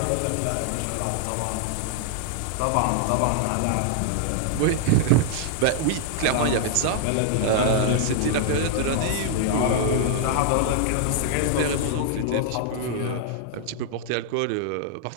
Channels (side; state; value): both; different; correlation -0.01